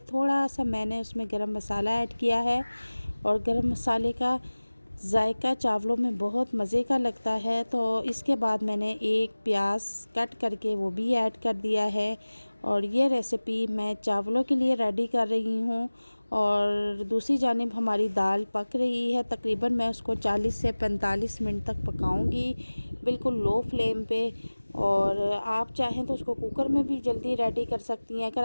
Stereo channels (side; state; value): both; inverted; correlation -1.00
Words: थोड़ा सा मैंने उसमें गरम मसाला ऐड किया है और गरम मसाले का जायका चावलों में बहुत मज़े का लगता है। तो इसके बाद मैंने 1 प्याज कट करके वो भी ऐड कर दिया है और ये रेसिपी मैं चावलों के लिए रेडी कर रही हूँ। और दूसरी जानिब हमारी दाल पक रही है। तकरीबन मैं उसको 40 से 45 मिनट तक पकाऊंगी बिल्कुल लो फ्लेम पे। और आप चाहें तो उसको कुकर में भी जल्दी रेडी कर सकती हैं। अगर